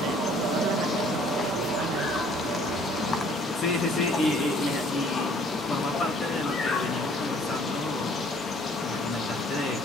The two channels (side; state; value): both; normal; correlation 0.57